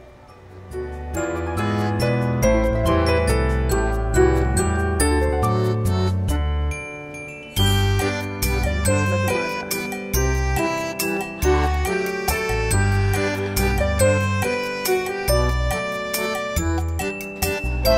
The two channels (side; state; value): both; identical; correlation 1.00